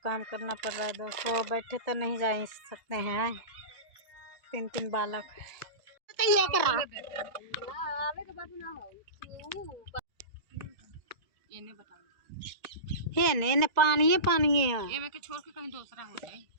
काम करना पड़ रहा है दोस्तों। बैठे तो नहीं जा सकते हैं, 3 बालक ने पानी है के छोड़ के कहीं दूसरा हो जाए।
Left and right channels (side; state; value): left; late; 1.9 ms